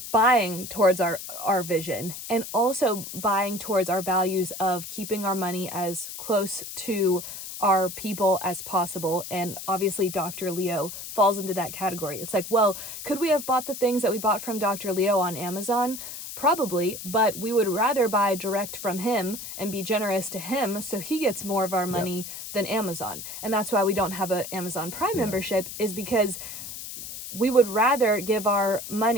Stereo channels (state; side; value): noise; left; hiss, 9 dB below the sound